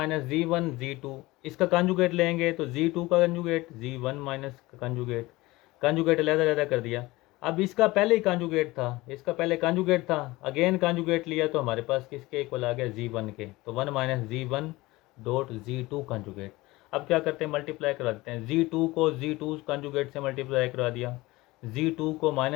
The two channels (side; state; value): right; quieter; 20.3 dB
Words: Z1 Z2, इसका कंजुगेट लेंगे तो Z2 का कंजुगेट Z1 माइनस का कंजुगेट अलग कर दिया। अब इसका पहले ही कंजुगेट था, इसका पहले कंजुगेट था, अगेन कंजुगेट लिया तो हमारे पास किसके इक्वल आ गया Z1 के। तो 1 minus Z1 dot Z2 conjugate. अब क्या करते हैं मल्टीप्लाई करा देते हैं। Z2 को Z2 कंजुगेट से मल्टीप्लाई करा दिया, Z2 को